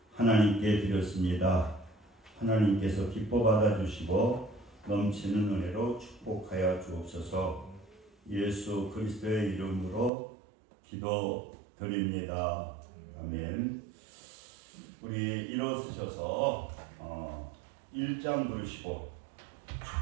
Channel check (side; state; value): left; drops out; at 10.1 s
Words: 하나님께 드렸습니다. 하나님께서 기뻐 받아주시고 넘치는 은혜로 축복하여 주옵소서. 예수 그리스도의 이름으로 기도드립니다. 아멘. 우리 일어서셔서 1장 부르시고